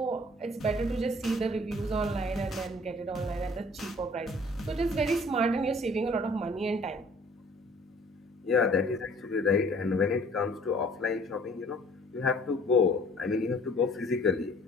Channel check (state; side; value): normal; both; correlation 0.54